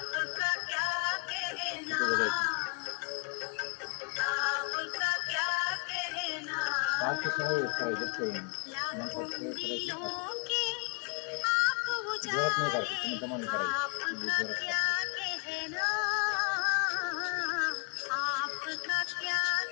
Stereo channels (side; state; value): right; quieter; 38.4 dB